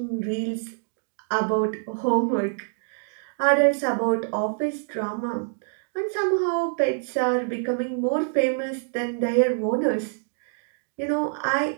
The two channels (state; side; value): silent; left; digital silence